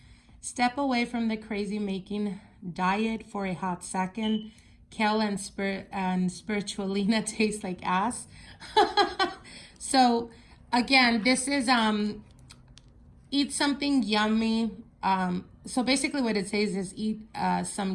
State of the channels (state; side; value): identical; both; correlation 1.00